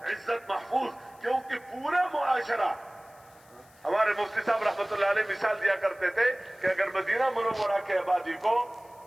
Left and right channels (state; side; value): noise; left; hiss, 28 dB below the sound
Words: عزت محفوظ، کیونکہ پورا معاشرہ، ہمارے مفتی صاحب رحمت اللہ علیہ مثال دیا کرتے تھے کہ اگر مدینہ منورہ کے آبادی کو